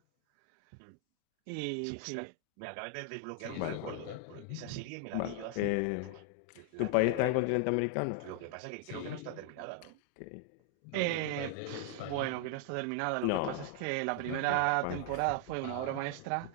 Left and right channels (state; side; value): different; both; correlation 0.00